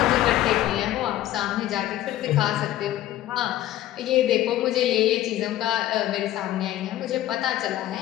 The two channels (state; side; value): quieter; right; 13.8 dB